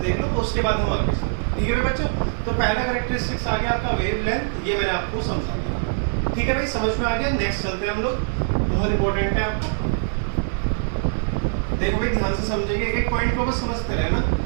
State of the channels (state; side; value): silent; left; 63 dB below the other